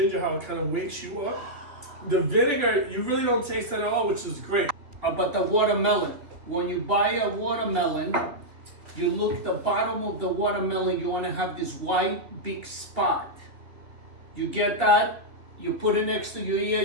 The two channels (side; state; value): left; late; 3.1 ms